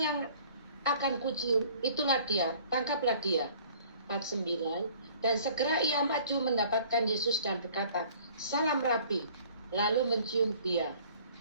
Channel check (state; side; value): inverted; both; correlation -0.53